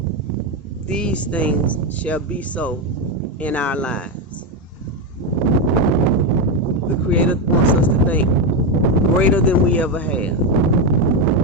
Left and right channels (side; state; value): both; normal; correlation 0.09